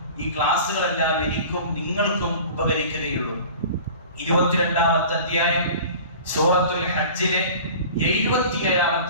ഈ ക്ലാസുകളെല്ലാം എനിക്കും നിങ്ങൾക്കും ഉപകരിക്കുകയുള്ളൂ. 22-ാമത്തെ അധ്യായം സൂറത്തുൽ ഹജ്ജിലെ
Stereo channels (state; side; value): inverted; both; correlation -0.41